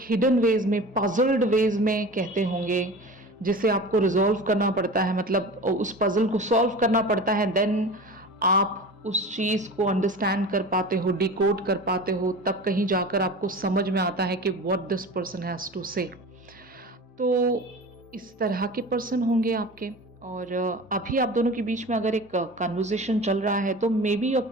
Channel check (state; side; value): normal; both; correlation 0.35